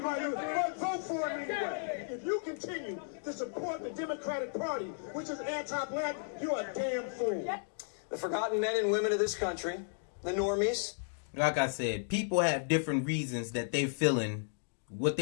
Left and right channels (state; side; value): silent; right; digital silence